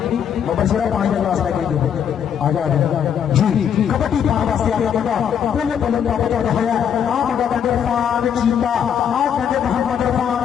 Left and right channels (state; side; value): quieter; right; 8.4 dB